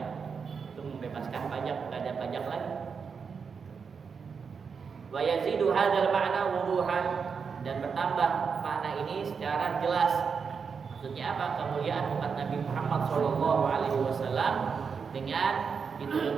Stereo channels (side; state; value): left; quieter; 5.9 dB